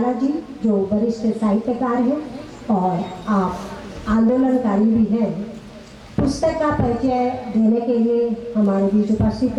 जी, जो वरिष्ठ साहित्यकार हैं और आप आंदोलनकारी भी हैं। पुस्तक का परिचय देने के लिए हमारे बीच उपस्थित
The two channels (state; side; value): identical; both; correlation 1.00